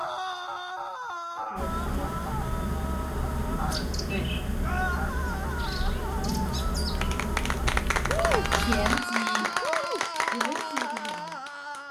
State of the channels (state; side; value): identical; both; correlation 1.00